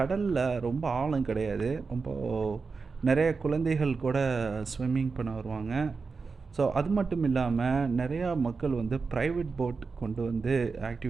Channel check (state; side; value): quieter; left; 4.7 dB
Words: ரொம்ப ஆழம் கிடையாது. ரொம்ப நெறைய குழந்தைகள் கூட ஸ்விம்மிங் பண்ண வருவாங்க. ஸோ அது மட்டும் இல்லாம நெறையா மக்கள் வந்து பிரைவேட் போட் கொண்டு வந்து